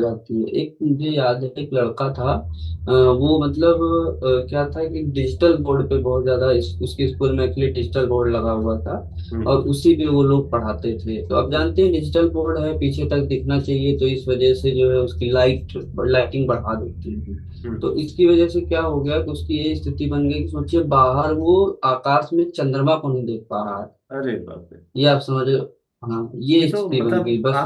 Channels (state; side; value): identical; both; correlation 1.00